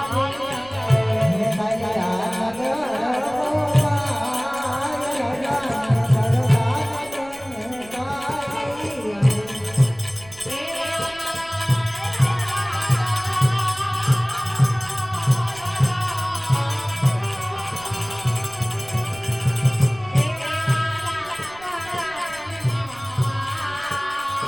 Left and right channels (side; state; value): right; noise; rumble, 22 dB below the sound